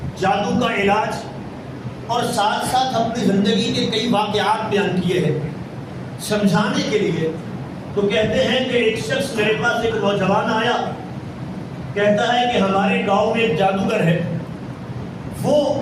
جادو کا علاج اور ساتھ ساتھ اپنی زندگی کے کئی واقعات بیان کیے ہیں سمجھانے کے لیے. تو کہتے ہیں کہ ایک شخص میرے پاس ایک نوجوان آیا، کہتا ہے کہ ہمارے گاؤں میں ایک جادوگر ہے، وہ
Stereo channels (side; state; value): both; identical; correlation 1.00